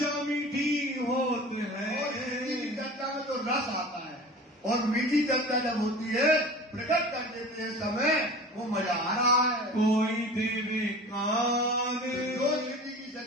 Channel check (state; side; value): normal; both; correlation 0.38